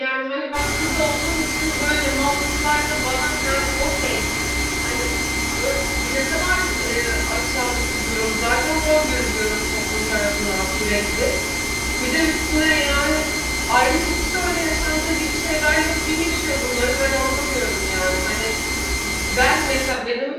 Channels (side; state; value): both; identical; correlation 1.00